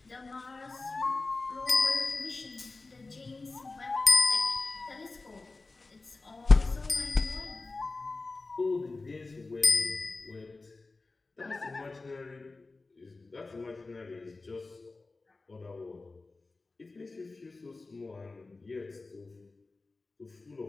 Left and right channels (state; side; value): quieter; right; 3.5 dB